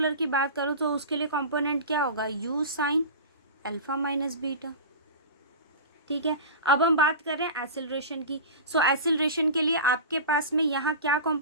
की बात करूँ तो उसके लिए कंपोनेंट क्या होगा, u sine alpha minus beta, ठीक है। अब हम बात कर रहे हैं एक्सेलरेशन की। सो एक्सेलरेशन के लिए आपके पास में यहाँ क्या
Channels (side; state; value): both; inverted; correlation -0.30